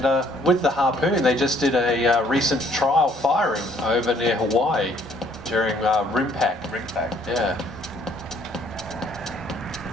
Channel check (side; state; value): both; normal; correlation 0.63